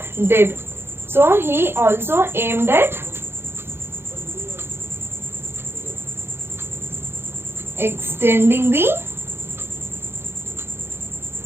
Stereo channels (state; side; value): late; left; 0.11 ms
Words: did. So he also aimed at extending the